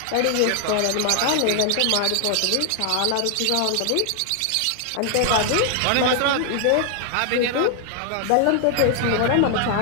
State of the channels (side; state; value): both; different; correlation 0.00